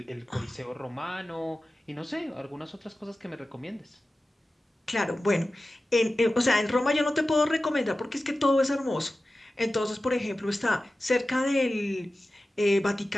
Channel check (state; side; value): normal; both; correlation 0.95